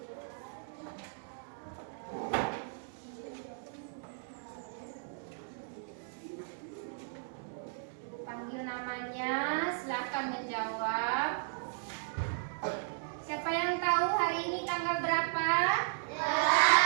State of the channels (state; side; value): silent; left; digital silence